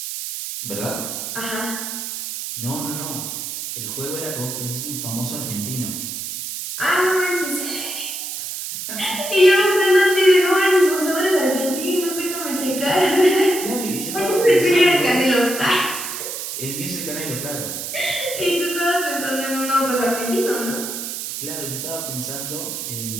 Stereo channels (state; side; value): noise; right; hiss, 6 dB below the sound